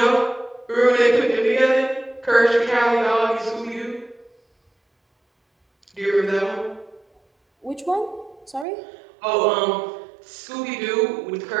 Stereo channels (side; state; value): left; drops out; at 8.7 s